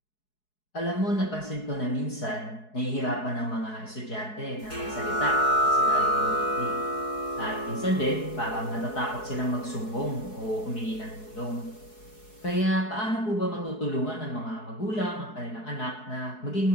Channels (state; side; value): late; right; 4.7 ms